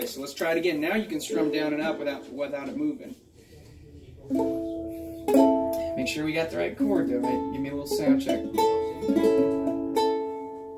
So let's try it again. Now you can strum down and up without it moving. Make sure we got the right chord though, right? Give me a little sound check.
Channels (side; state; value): both; identical; correlation 1.00